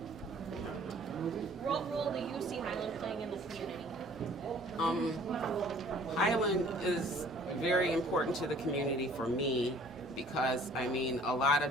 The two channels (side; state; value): both; normal; correlation 0.54